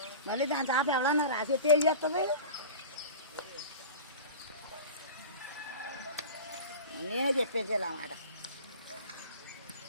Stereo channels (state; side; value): inverted; both; correlation -0.34